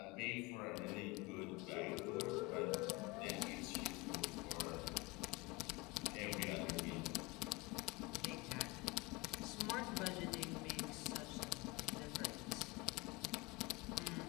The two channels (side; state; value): right; quieter; 23.7 dB